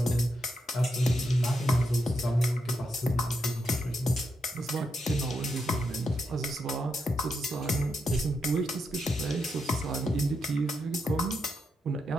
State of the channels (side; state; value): both; normal; correlation 0.83